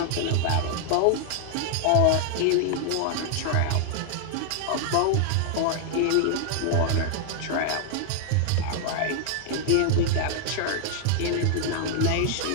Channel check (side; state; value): both; different; correlation 0.00